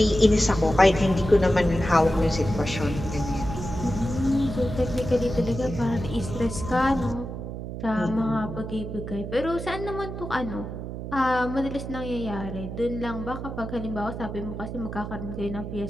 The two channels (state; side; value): noise; right; hum, 7 dB below the sound